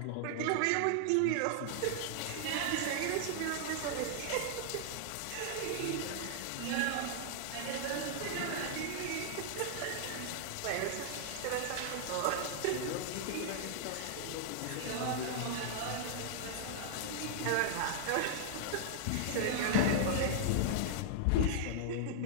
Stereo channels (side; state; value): both; different; correlation -0.01